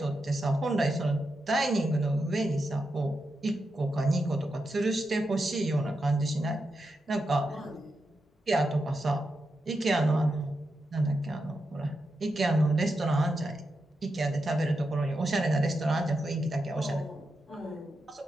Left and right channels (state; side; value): normal; both; correlation 0.87